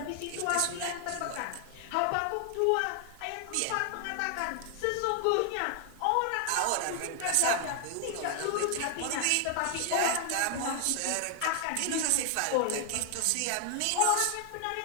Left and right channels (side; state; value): both; different; correlation 0.00